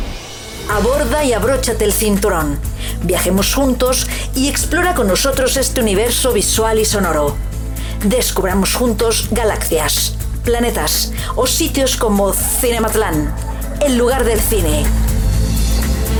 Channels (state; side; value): identical; both; correlation 1.00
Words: Aborda y abróchate el cinturón. Viajemos juntos y explora con nosotros este universo visual y sonoro. Descubramos juntos galaxias, planetas o sitios como Cinematlán, el lugar del cine.